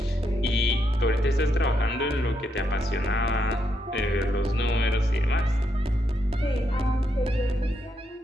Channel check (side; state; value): both; normal; correlation 0.79